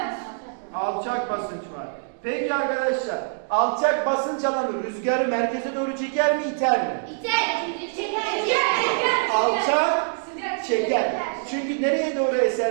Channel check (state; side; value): silent; left; digital silence